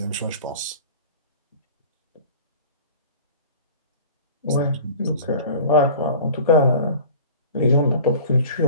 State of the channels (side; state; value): both; inverted; correlation -0.41